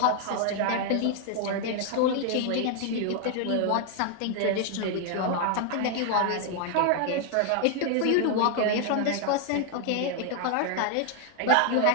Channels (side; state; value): both; different; correlation 0.00